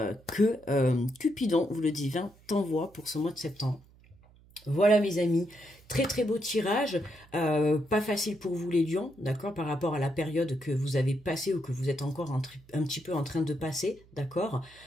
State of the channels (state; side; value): noise; right; hum, 27 dB below the sound